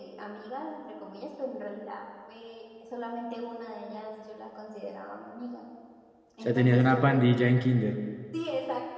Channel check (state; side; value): identical; both; correlation 1.00